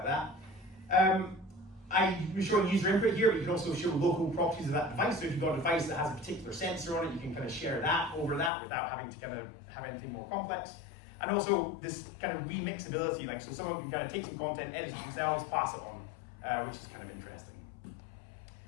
that. I'm showing user input here, but you can also show local properties of that device. So if you've got a device that has a particular sensor on it, you can kind of share that over that without having to kind of have anything more complex. And also this kind of remixability, like so someone can kind of take some content, edit it themselves, pass it on, which is kind of interesting.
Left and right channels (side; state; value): right; drops out; at 8.5 s